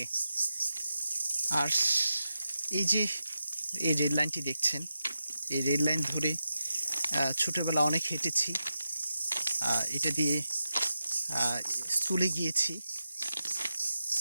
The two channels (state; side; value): inverted; both; correlation -0.89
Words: আর এই যে এই রেল লাইনটি দেখছেন, এই রেল লাইন ধরে ছোটোবেলা অনেক হেঁটেছি, এটা দিয়ে স্কুলে গিয়েছি,